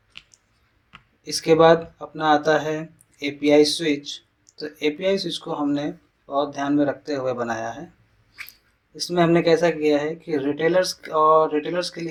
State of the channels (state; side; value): identical; both; correlation 1.00